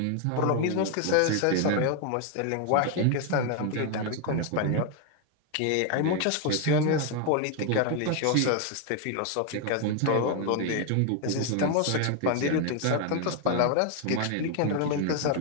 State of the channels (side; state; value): both; different; correlation 0.01